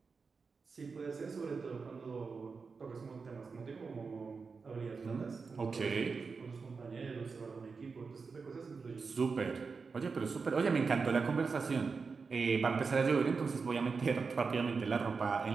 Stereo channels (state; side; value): quieter; left; 4.9 dB